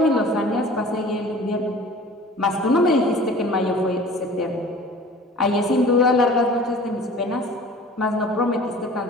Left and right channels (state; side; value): normal; both; correlation 0.44